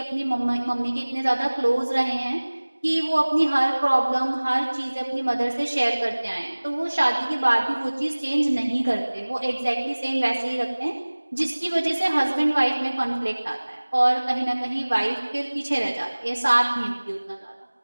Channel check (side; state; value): both; inverted; correlation -1.00